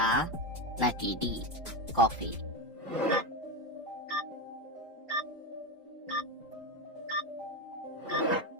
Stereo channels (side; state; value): both; normal; correlation 0.15